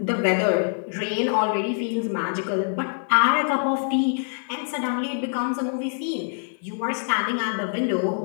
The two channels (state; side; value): silent; right; 56 dB below the other